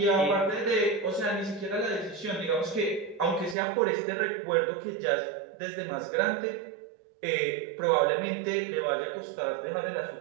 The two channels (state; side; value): drops out; left; at 3.6 s